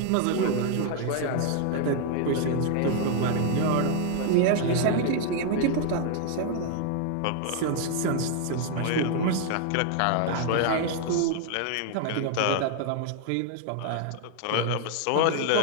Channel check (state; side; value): different; both; correlation 0.00